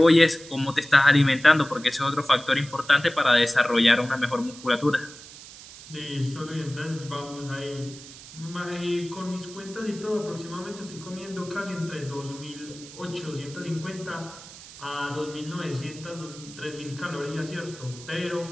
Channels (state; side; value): noise; right; hiss, 17 dB below the sound